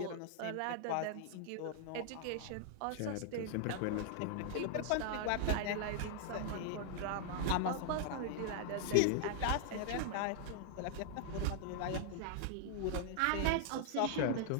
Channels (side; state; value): both; different; correlation -0.01